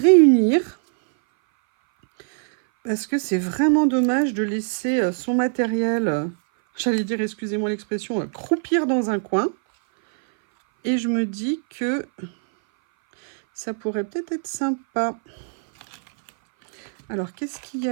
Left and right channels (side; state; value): left; silent; 59 dB below the other